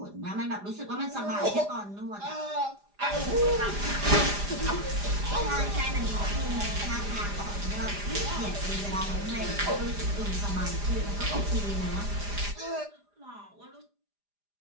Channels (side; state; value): left; late; 4.9 ms